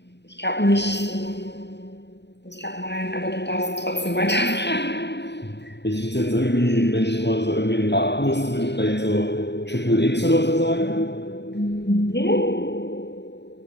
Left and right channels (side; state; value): right; late; 0.50 ms